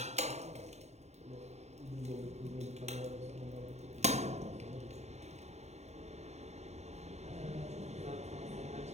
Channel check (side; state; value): left; late; 0.32 ms